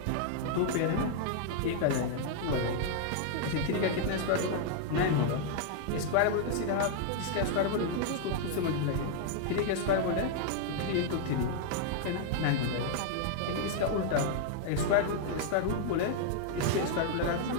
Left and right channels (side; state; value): both; different; correlation 0.00